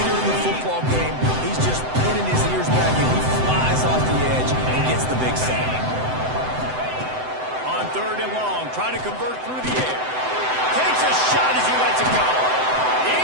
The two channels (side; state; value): left; late; 7.9 ms